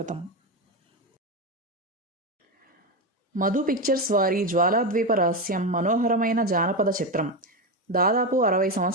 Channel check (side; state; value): both; normal; correlation 0.13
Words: మధు పిక్చర్స్ వారి జ్వాలాద్వీప రహస్యం మనోహరమైన జానపద చిత్రం దాదాపు 60